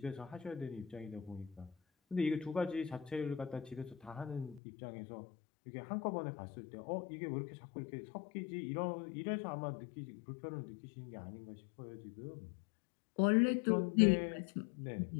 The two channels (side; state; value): right; drops out; at 4.6 s